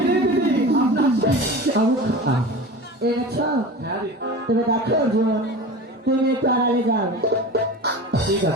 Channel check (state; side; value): normal; both; correlation 0.33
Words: রে দিদি, আপনার সেই চাবুক খান। এনেছ? হ্যাঁ দিদি। তবে দেখো অর্জুন, তুমি একটু আড়ালে যাও। ঠিক